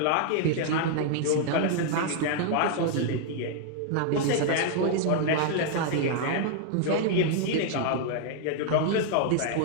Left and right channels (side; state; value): both; different; correlation 0.00